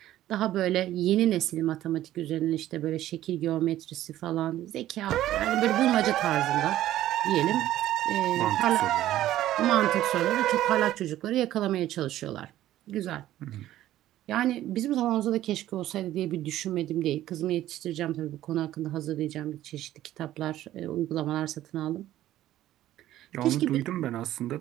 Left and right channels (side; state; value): left; quieter; 13.7 dB